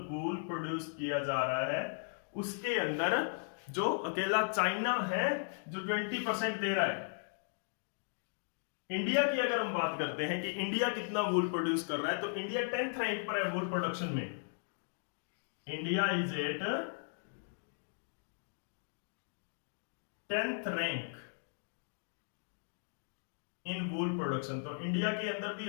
वूल प्रोड्यूस किया जा रहा है उसके अंदर जो अकेला चाइना है जो 20% दे रहा है। इंडिया की अगर हम बात करते हैं कि इंडिया कितना वूल प्रोड्यूस कर रहा है, तो इंडिया 10th रैंक पर है वूल प्रोडक्शन में। India is at 10th rank in wool production. तो इंडिया के अंदर भी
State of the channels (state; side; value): silent; right; digital silence